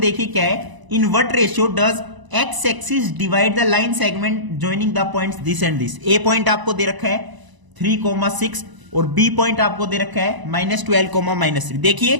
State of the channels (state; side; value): late; left; 1.0 ms